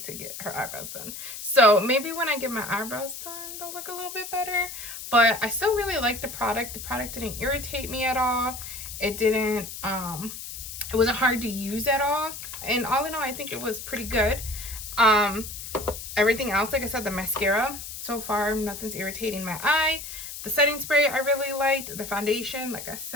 to get her eyebrows done. So maybe when I get my eyebrows done, they'll look a little bit better. But I still really like the product. The product didn't irritate me at all. It didn't, it wasn't hard to use at all. And all in all, I think it was pretty good. Everything else, like I said, the mascara, so far, nothing's irritating my eye. The setting spray, I really liked. The foundation, like I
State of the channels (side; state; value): left; noise; hiss, 9 dB below the sound